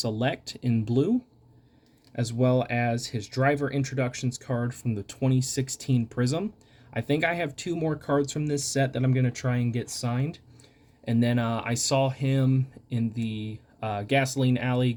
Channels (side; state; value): both; identical; correlation 1.00